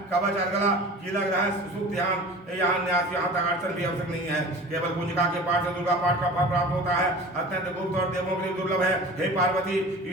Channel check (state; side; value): normal; both; correlation 0.39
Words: कवच अर्गला कीलक रहस्य सुख ध्यान यहाँ न्यास यहाँ तक अड़चन भी आवश्यक नहीं है। केवल पूंजिका के पाठ से दुर्गा पाठ का फल प्राप्त होता है। अत्यंत गुप्त और देवों के लिए दुर्लभ है। हे पार्वती,